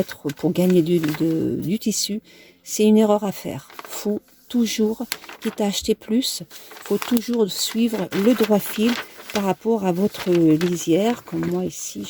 pour gagner du tissu. C'est une erreur à faire. Faut toujours, quitte à acheter plus, faut toujours suivre le droit fil par rapport à votre lisière. Comme moi ici,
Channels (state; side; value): identical; both; correlation 1.00